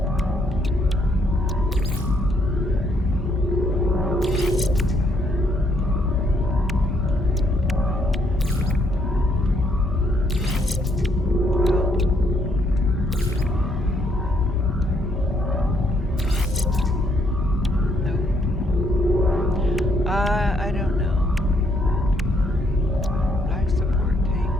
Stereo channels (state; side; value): normal; both; correlation 0.71